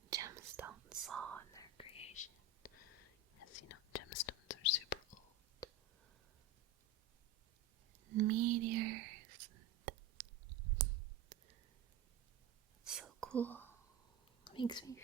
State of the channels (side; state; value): left; quieter; 4.6 dB